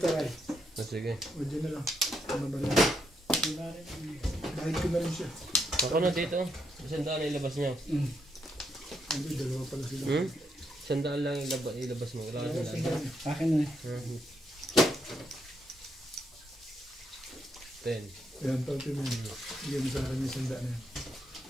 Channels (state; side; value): normal; both; correlation 0.77